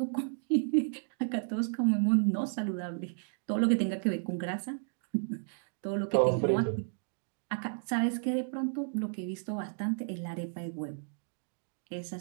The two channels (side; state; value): left; silent; digital silence